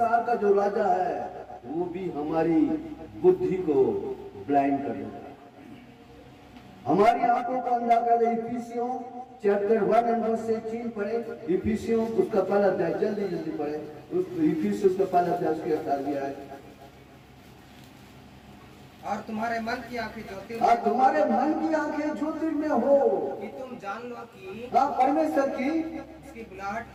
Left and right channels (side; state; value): both; identical; correlation 1.00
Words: का जो राजा है, वो भी हमारी बुद्धि को ब्लाइंड कर देगा, हमारी आंखों को अंधा कर दे। इफिसियों चैप्टर 1 एंड वर्स 18 पढ़े। इफिसियों उसका पहला अध्याय, जल्दी पढ़े। इफिसियों उसका पहला अध्याय, उसके 18 है। और तुम्हारे मन की आंखें ज्योतिर्मय हो, कि तुम जान लो कि परमेश्वर की उसकी बुलाहट